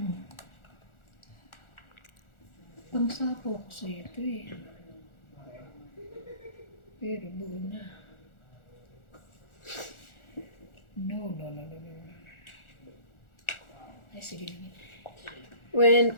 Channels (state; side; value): late; right; 1.4 ms